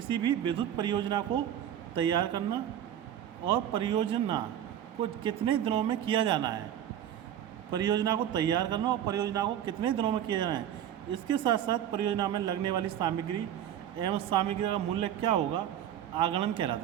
भी विद्युत परियोजना को तैयार करना और परियोजना को कितने दिनों में किया जाना है। परियोजना को तैयार करना और परियोजना को कितने दिनों में किया जाना है। इसके साथ साथ परियोजना में लगने वाली सामग्री एवं सामग्री का मूल्य क्या होगा, आगणन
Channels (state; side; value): quieter; left; 10.6 dB